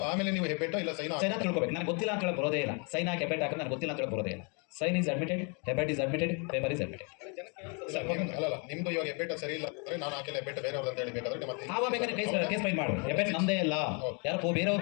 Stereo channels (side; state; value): right; quieter; 34.8 dB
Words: ಆಮೇಲೆ ನೀವು ಹೆಬ್ಬೆಟ್ಟ ಇಲ್ಲ ಸೈನ್ ತಿಳ್ಕೊಬೇಕು. ನನಗೆ ಗೊತ್ತಿಲ್ಲ ಅಂತ ಹೇಳಿ ಬರೋದೇ ಇಲ್ಲ. ಸೈನ್ ಹಾಕಿ ಹೆಬ್ಬೆಟ್ ಹಾಕಿದ್ರೆ ನನಗೆ ಗೊತ್ತಿಲ್ಲ ಅಂತ ಹೇಳಿ ಬರೋದೇ ಇಲ್ಲ. ಸೈನ್ ಈಸ್ ಅಡ್ಮಿಟೆಡ್, ಹೆಬ್ಬೆಟ್ is admitted, paper is admitted. ಅಲ್ಲ, ನಿಮ್ದು ಇವಾಗ ಹೆಬ್ಬೆಟ್ಟ ಸರಿ ಇಲ್ಲ ಅಂದ್ರೆ ನಾನು ಹಾಕಿಲ್ಲ ಹೆಬ್ಬೆಟ್ಟ ಬೇರೆಯವ್ರು ಅಂತ ಹೇಳಿ ಬೇಕಾದ್ರೆ ಮತ್ತೆ ಆವಾಗ ಬೇಕಾದ್ರೆ ಕೇಸ್ ಫೈಲ್ ಮಾಡು. ಹೆಬ್ಬೆಟ್ ನಮ್ಮದೇ ಇಲ್ಲ, ಯಾರೋ